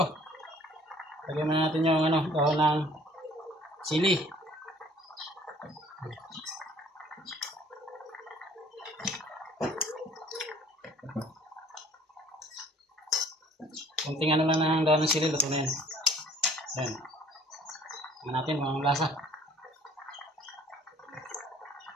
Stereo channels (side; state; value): both; normal; correlation 0.54